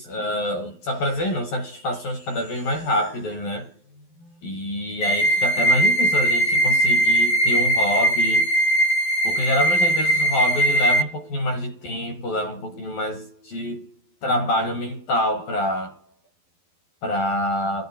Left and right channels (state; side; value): late; right; 12 ms